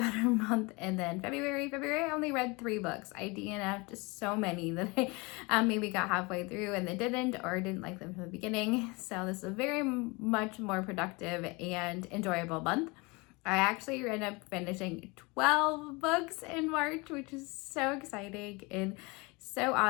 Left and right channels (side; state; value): right; quieter; 26.7 dB